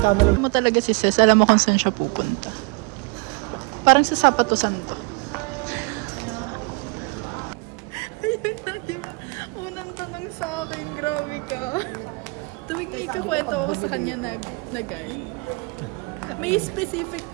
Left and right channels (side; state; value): left; quieter; 30.2 dB